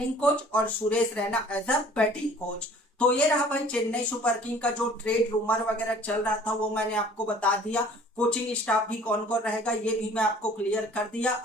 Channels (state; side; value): normal; both; correlation 0.52